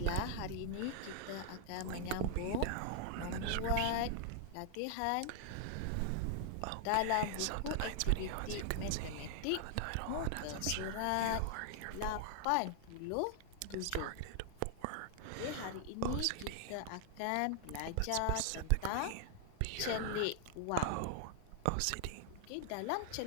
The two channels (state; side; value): different; both; correlation 0.00